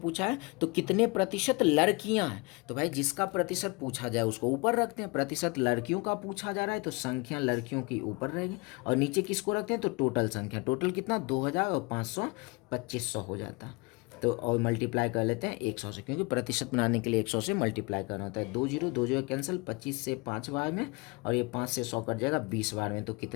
पूछा है, तो कितने प्रतिशत लड़कियां हैं। तो भाई जिसका प्रतिशत पूछा जाए उसको ऊपर रखते हैं, प्रतिशत लड़कियों का पूछा जा रहा है तो संख्या लड़कियों की ऊपर रहेगी, और नीचे किसको रखते हैं, तो टोटल संख्या, टोटल कितना 2000 और 500 2500 हो जाता है। तो और मल्टीप्लाई कर लेते हैं 100 से, क्योंकि प्रतिशत बनाने के लिए 100 से मल्टीप्लाई करना होता है। 2 जीरो 2 जीरो कैंसिल, 25 से 5 बार में, और ये 5 से 100 कट जाएगा 20 बार में। तो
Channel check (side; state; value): right; quieter; 27.7 dB